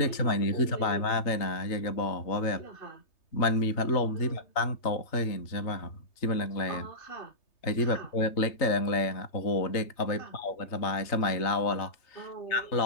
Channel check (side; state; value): right; late; 3.3 ms